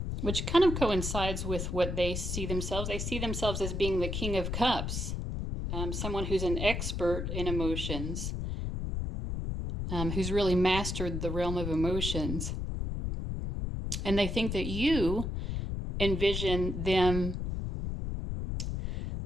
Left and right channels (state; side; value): noise; left; rumble, 3 dB below the sound